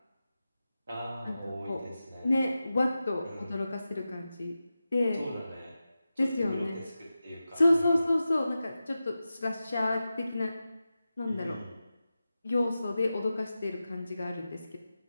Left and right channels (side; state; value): both; inverted; correlation -0.93